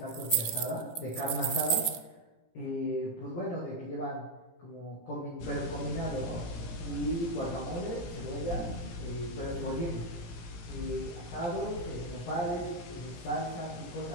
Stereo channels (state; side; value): late; right; 18 ms